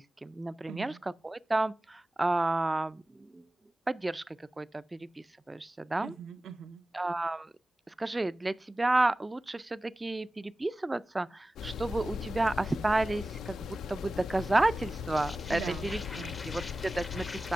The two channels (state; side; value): normal; both; correlation 0.95